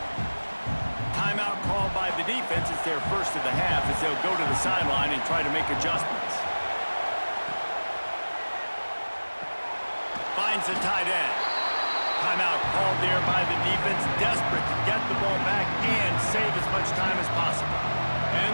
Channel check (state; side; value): inverted; both; correlation -1.00